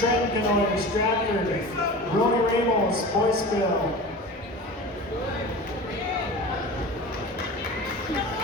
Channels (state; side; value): normal; both; correlation 0.34